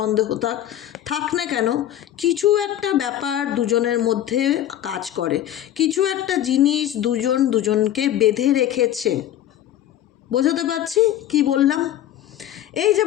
থাক না কেন, কিছু একটা ব্যাপার দুজনের মধ্যে কাজ করে, কিছু একটা জিনিস দুজনকে বেঁধে রেখেছে। বোঝাতে পারছি কি বললাম? এই যে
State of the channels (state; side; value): quieter; right; 12.0 dB